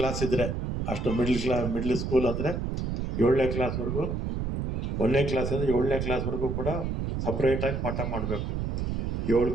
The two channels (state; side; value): noise; right; rumble, 2 dB below the sound